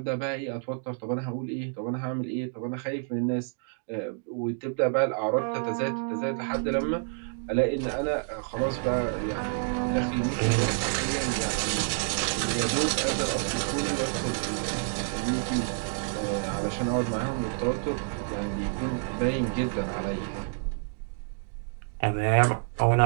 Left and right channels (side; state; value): left; silent; 59 dB below the other